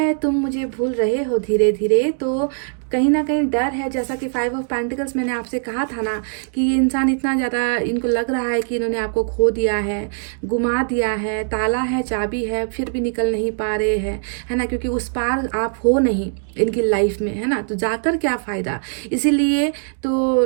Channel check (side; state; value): left; silent; digital silence